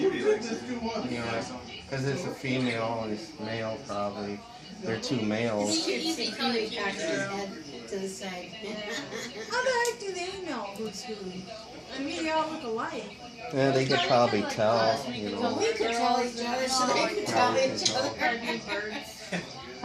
likes it. you know, because it's a female and it's male probably. They're two males. Easy Kiwi cocks his head to the side. How the heck do they know who's who? I mean, they all look alike. Yeah, they could probably tell, you So know. we could tell each other, so they could tell each other.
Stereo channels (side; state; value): both; identical; correlation 1.00